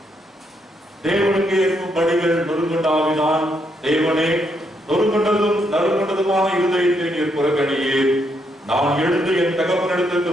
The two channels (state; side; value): normal; both; correlation 0.76